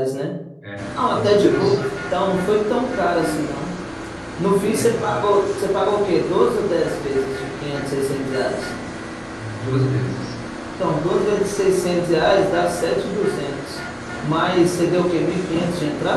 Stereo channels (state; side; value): identical; both; correlation 1.00